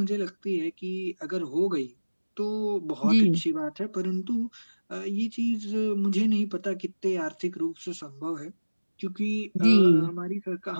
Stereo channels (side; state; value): both; inverted; correlation -1.00